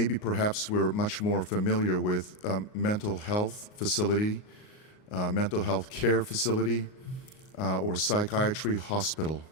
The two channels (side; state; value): right; late; 38 ms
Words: perhaps we're much more familiar with mental health facility, mental health care facility, or psychiatry hospital.